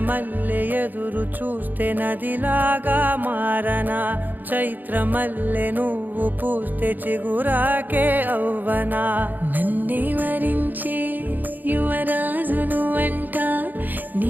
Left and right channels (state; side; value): late; left; 0.086 ms